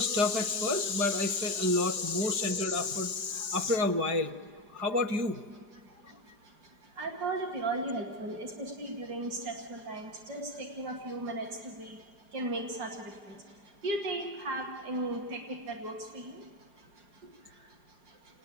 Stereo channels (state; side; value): late; left; 4.9 ms